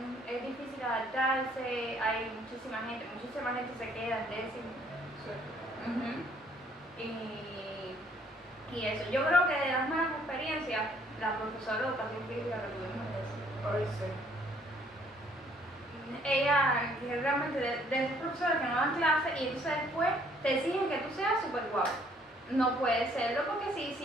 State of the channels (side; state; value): both; normal; correlation 0.63